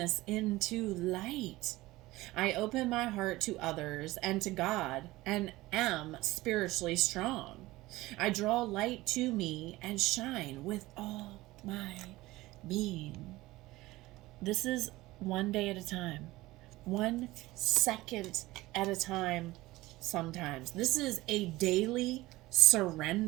into light. I open my heart to others and to God, and am spiritually strong. I draw light to me and shine with all my being. This is one day at a time, 1 second at a time sometimes. This is a daily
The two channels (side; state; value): left; quieter; 18.8 dB